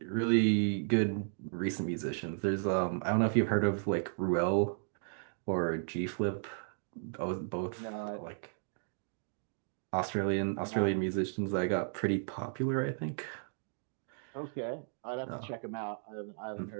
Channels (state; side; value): silent; left; digital silence